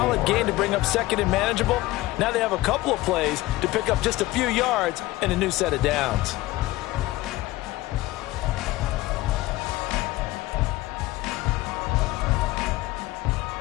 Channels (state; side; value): quieter; right; 18.3 dB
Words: gain to bring up second and manageable. Now they have a couple of plays to pick up just a few yards and a new set of downs.